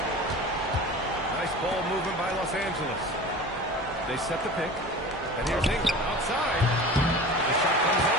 Nice ball movement by Los Angeles. They set the pick. And here's Ingram outside. The shot comes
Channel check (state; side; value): normal; both; correlation 0.36